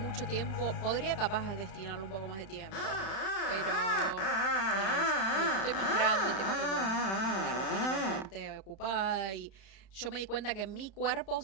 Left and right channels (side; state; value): right; late; 31 ms